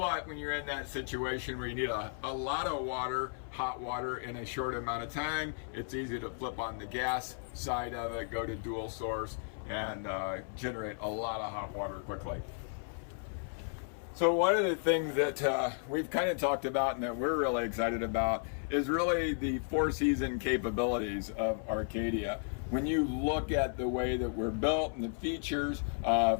when you're in that situation where you need a lot of water, hot water, in a short amount of time, it's easy to flip on the gas side of it, go to dual source, and generate a lot of hot water quickly. So one of the things that we've kind of talked about and that we're really excited about is really the four-season capabilities of Arcadia. When you look at the way that we're built and the features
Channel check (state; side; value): silent; right; 55 dB below the other